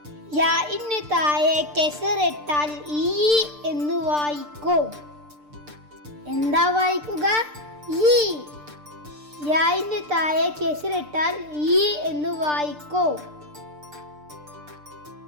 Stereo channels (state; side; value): late; left; 6.7 ms